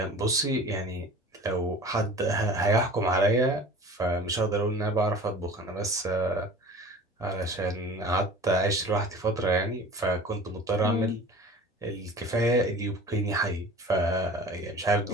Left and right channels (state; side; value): normal; both; correlation 0.41